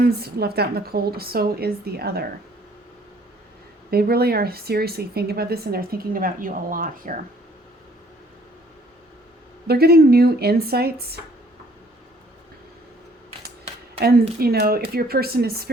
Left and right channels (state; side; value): normal; both; correlation 0.60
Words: left out in the cold, so is the other. They really are seriously thinking about this, and they're thinking about you a lot here. They're getting new insights. And, if your person is